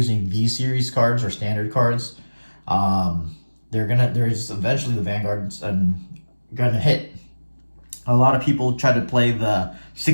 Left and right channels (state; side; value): inverted; both; correlation -1.00